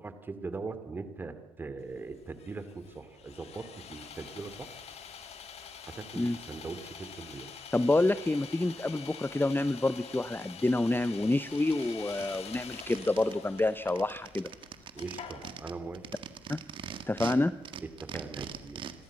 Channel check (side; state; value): both; normal; correlation 0.90